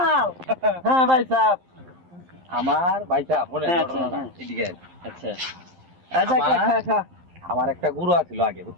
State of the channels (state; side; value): late; left; 11 ms